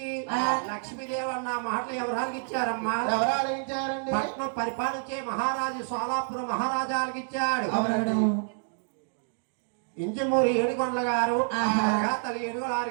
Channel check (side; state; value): left; silent; digital silence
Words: లక్ష్మీదేవి అన్న మాటలు ఎవరాలకి ఇచ్చారమ్మా? పట్నం పరిపాలించే మహారాజు సోలాపురం మహారాజాలకు ఇచ్చాడు. ఇంజమూరి ఏడుగొండల గారు తల్లి ఎడుగుల